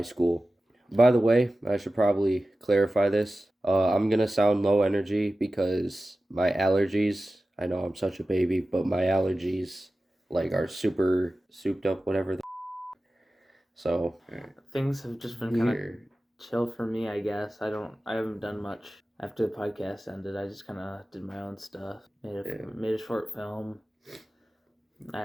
school. By the way, I should probably clarify this. I'm going to sound low energy because my allergies, I know I'm such a baby, but my allergies, are super souped up, whatever the So, Things have just been kind of chill for me, I guess. I haven't done much after the podcast ended. I just kind of did my own stuff. Made a short film.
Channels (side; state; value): both; normal; correlation 0.95